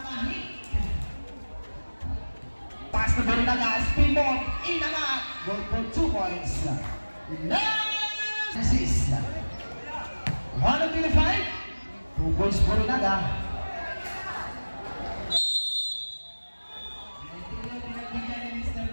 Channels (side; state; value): both; inverted; correlation -1.00